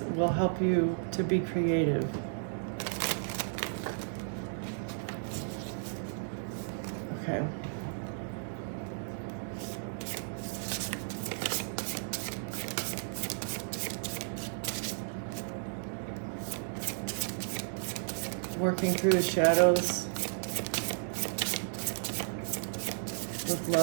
will help you to be creative. Okay. Working through the shadows with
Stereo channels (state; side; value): silent; left; digital silence